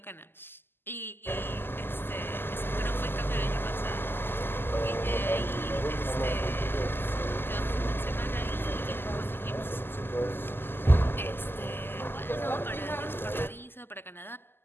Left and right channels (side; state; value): right; late; 0.10 ms